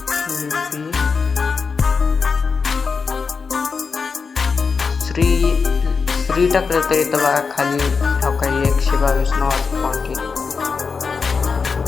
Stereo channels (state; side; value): quieter; right; 5.1 dB